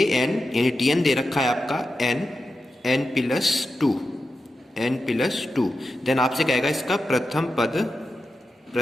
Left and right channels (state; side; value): normal; both; correlation 0.90